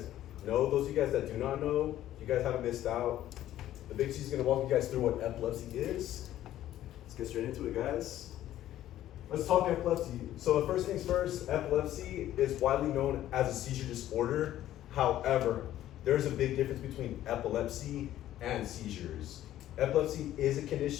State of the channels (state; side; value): quieter; right; 13.0 dB